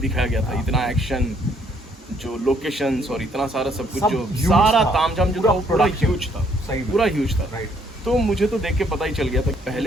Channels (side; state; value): both; normal; correlation 0.67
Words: गया था, इतना एक्शन, जो लोकेशंस और इतना सारा सब कुछ, सब जो huge सारा था। तामझाम जो पूरा था वो पूरा production। ह्यूज था, सही में। पूरा ह्यूज था। राइट, तो मुझे तो देख के पता ही चल गया था कि